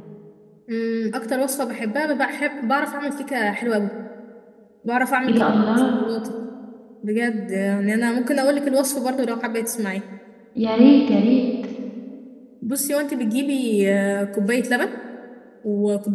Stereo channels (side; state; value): both; identical; correlation 1.00